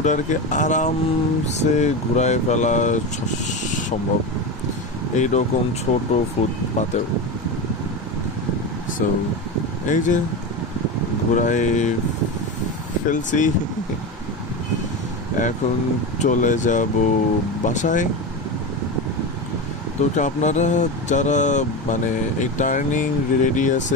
আরামসে ঘুরায় ফেলা সম্ভব এইরকম ছোট ফুটপাতেও। সো এই যে ঘুরায় ফেলছি, এখন চলে যাব বাসায়। তো আপনারা যারা মানে এই টার্নিং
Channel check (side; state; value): both; normal; correlation 0.21